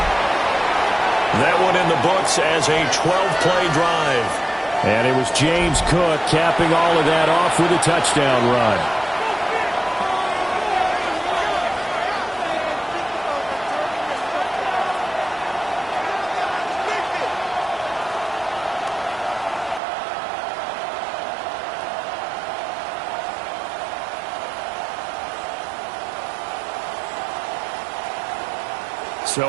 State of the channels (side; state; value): left; drops out; at 19.8 s